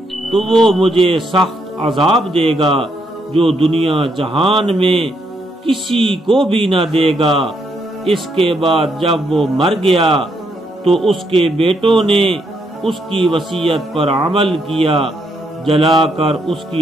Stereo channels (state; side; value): normal; both; correlation 0.76